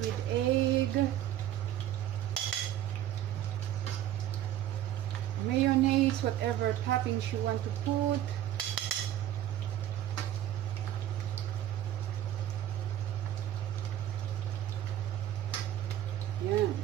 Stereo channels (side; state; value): left; quieter; 12.1 dB